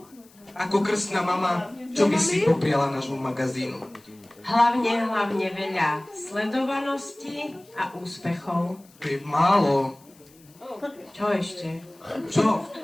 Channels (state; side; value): noise; left; hiss, 28 dB below the sound